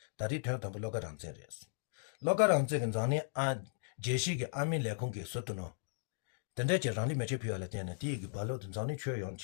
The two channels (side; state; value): right; silent; digital silence